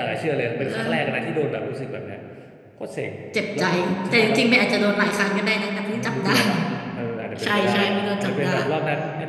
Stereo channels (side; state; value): both; identical; correlation 1.00